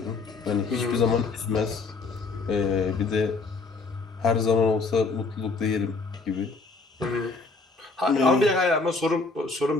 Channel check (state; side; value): quieter; right; 4.0 dB